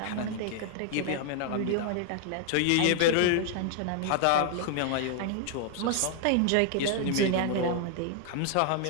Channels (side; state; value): both; different; correlation 0.00